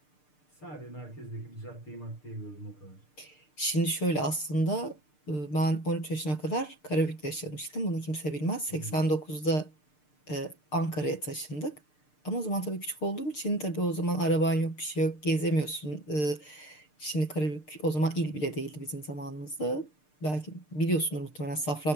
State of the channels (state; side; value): late; right; 6.7 ms